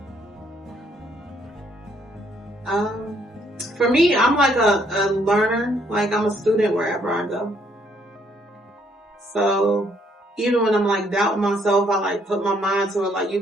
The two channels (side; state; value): both; normal; correlation 0.69